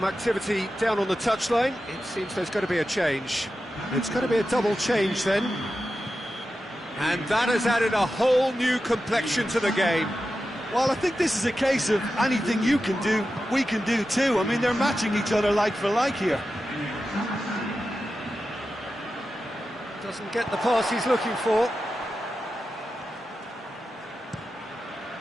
activity down on the touchline. It seems there's going to be a change. It's going to be a double change then. And that has added a whole new complexion to the game. Well, I think this is a case of anything you can do, we can do too. I mean, they're matching each other like for like here. Doesn't get the pass he's looking for.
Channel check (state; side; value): normal; both; correlation 0.92